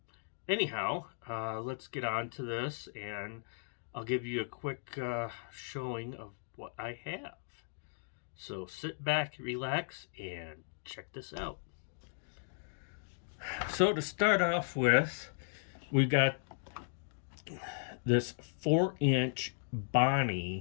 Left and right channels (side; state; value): right; silent; digital silence